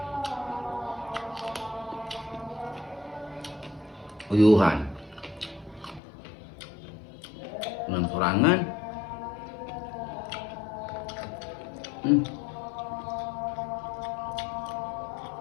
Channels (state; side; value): drops out; right; at 6.0 s